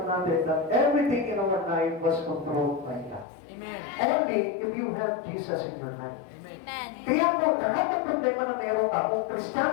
natin that everything in our life was controlled by God. Amen. Only if you have Jesus in your life. Amen. Kaya po, lahat ng problema na meron ka, kung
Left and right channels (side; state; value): right; drops out; at 3.2 s